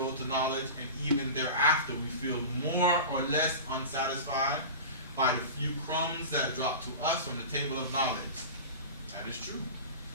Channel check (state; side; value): inverted; both; correlation -0.31